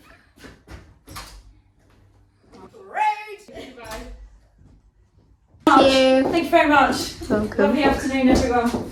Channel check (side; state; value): both; identical; correlation 1.00